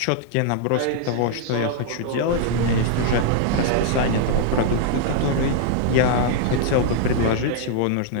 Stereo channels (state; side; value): different; both; correlation -0.01